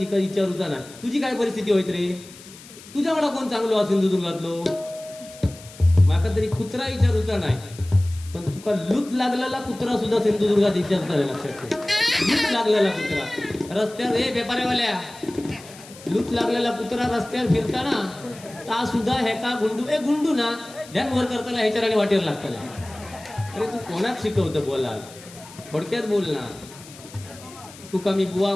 विचारूचा ना तुझी काय परिस्थिती होती रे. तुझ्या मला कोण चांगलो हा सिंधुदुर्गातलो. माका तरी कुत्रा विचारूचा नाही. पण तुका लूट लागलेला कुत्रा सुद्धा सिंधुदुर्गात विचारता. लक्षात ठेव. लूट लागलेला कुत्रा रस्त्यावर, हे व्यापाऱ्यावाल्या, लूट लागलेला कुत्रा रस्त्यावर फिरताना ता सुद्धा हे का गुंडू ना ध्यान वर करताना ह्याच्या वाटेवर लागताना. अरे तू कोणाक शिकवतं बोला. थोडक्यात बोल ना. तुका मी बुवा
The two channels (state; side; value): noise; left; hiss, 19 dB below the sound